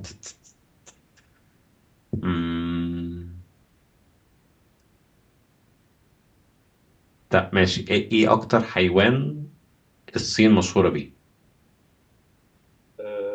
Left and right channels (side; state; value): both; identical; correlation 1.00